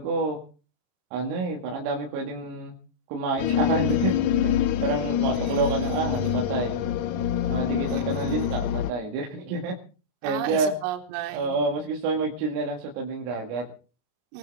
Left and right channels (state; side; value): late; left; 34 ms